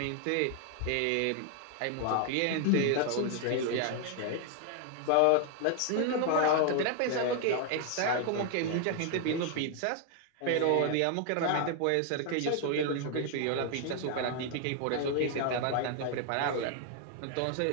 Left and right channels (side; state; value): both; different; correlation 0.00